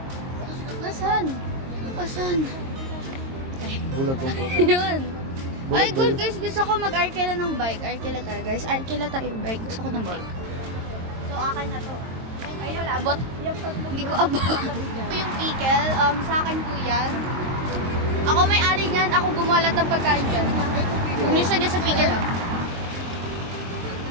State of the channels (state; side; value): late; left; 22 ms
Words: Asan? Asan? Bulag ng puto. Yun. Bulag Ay, ba good yun? guys. Gusto ko mag-arkela ng bike. Arkela tayo, guys. Arkela tayo bike. Gusto ko ng bike. So, akin na to. Ay, wala. Abot. Hindi ko abot. Ito yung pickle. Sa akin po yan. Ako may-ari niyan. Ako gumalat ng pagkain dyan. Umisa niya sa pickle, ah.